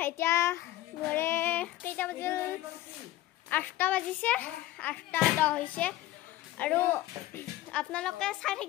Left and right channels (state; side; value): quieter; right; 15.4 dB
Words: এতিয়া ঘৰে কেইটা বাজিল 8টা বাজিছে 8:10 হৈছে আৰু আপোনালোকে চাই